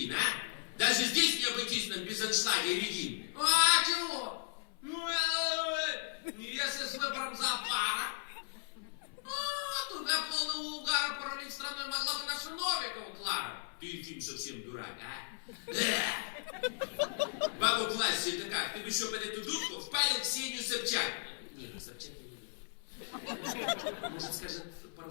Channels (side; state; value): right; silent; 54 dB below the other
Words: а? Даже здесь не обойтись нам без аншлага и Регин. А чего? Если с выбором зоопара, туда полного угара паралич страной могла бы наша Новикова Клара. Ты, Ефим, совсем дурак, а? Бабу классе это как? Ты бы еще под эту дудку впалил Ксению Собчак. Нет, Собчак я не люблю. Может, скажет пару